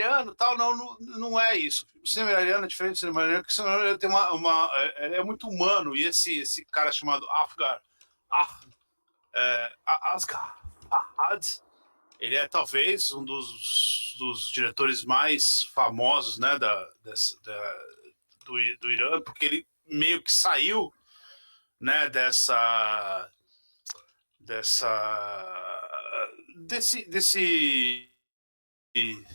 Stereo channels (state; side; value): inverted; both; correlation -1.00